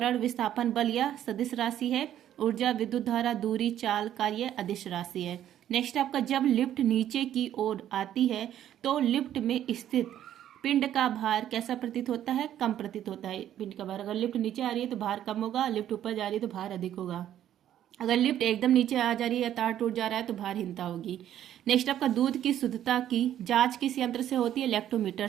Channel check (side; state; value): left; quieter; 11.3 dB